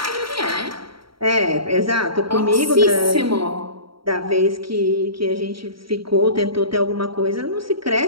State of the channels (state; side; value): late; left; 0.74 ms